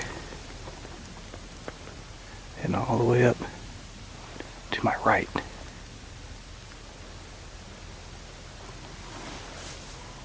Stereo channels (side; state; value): both; identical; correlation 1.00